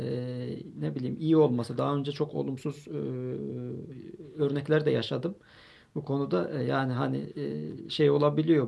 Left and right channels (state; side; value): identical; both; correlation 1.00